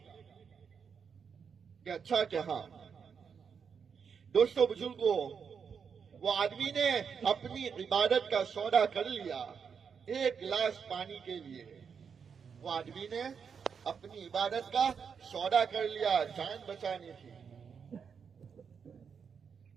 کہ اچھا کہ ہاں. دوستو بزرگوں، وہ آدمی نے اپنی عبادت کا سودا کر لیا 1 گلاس پانی کے لیے. وہ آدمی نے اپنی عبادت کا سودا کر لیا، جان بچانی تھی.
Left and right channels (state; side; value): quieter; left; 6.5 dB